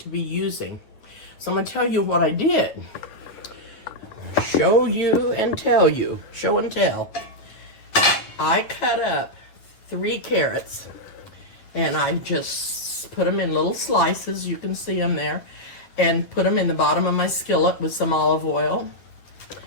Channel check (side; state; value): right; late; 9.6 ms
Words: be using. So I'm going to tell you what I did. Show you and tell you. Show and tell. I cut up 3 carrots and I just put them in little slices. You can see them there. And put them in the bottom of my skillet with some olive oil.